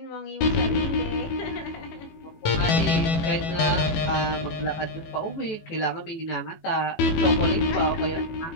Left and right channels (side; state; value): right; late; 18 ms